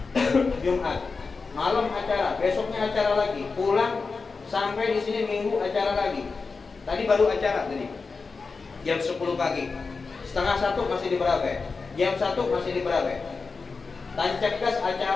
Malam acara, besoknya acara lagi. Pulang sampai di sini Minggu acara lagi. Tadi baru acara tadi. Jam 10 pagi. Setengah 1 masih di Berabe. Jam 1 masih di Berabe. Tancap gas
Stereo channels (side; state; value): right; quieter; 4.5 dB